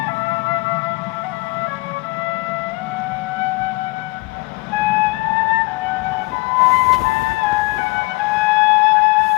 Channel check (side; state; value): right; quieter; 24.7 dB